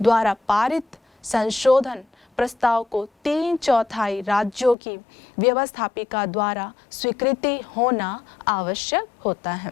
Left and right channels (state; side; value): drops out; right; at 4.8 s